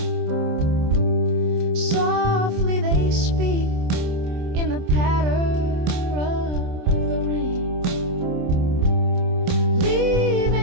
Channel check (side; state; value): left; late; 27 ms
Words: Softly they speak in the patter of the rain,